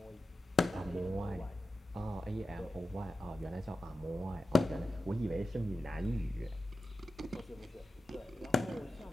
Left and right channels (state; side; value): normal; both; correlation 0.92